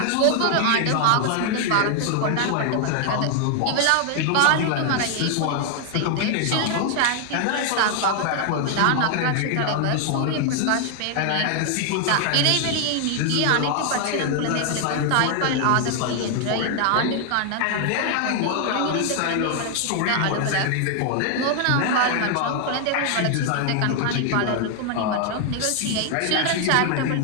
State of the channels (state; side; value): different; both; correlation 0.00